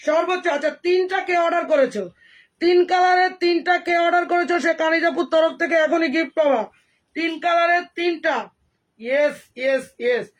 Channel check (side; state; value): both; identical; correlation 1.00